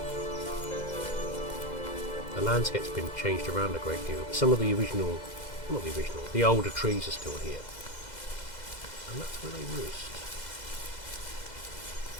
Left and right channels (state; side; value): late; right; 2.0 ms